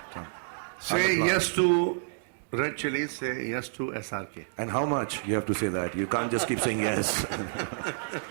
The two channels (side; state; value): left; silent; digital silence